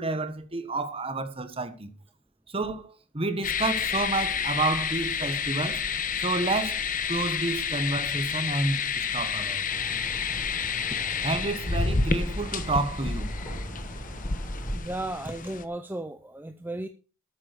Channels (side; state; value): both; normal; correlation 0.36